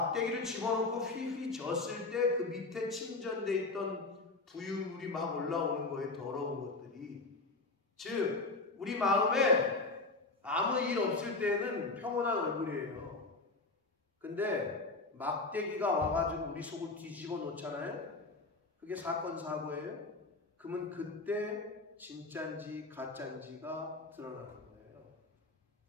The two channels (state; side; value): quieter; right; 3.5 dB